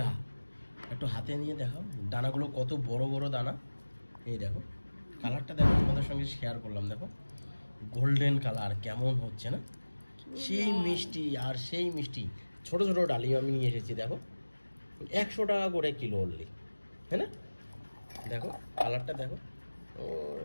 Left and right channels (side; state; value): both; inverted; correlation -1.00